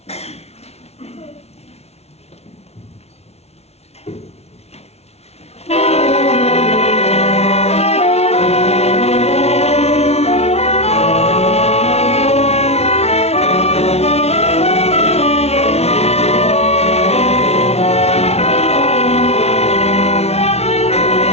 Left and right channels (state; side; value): late; right; 0.31 ms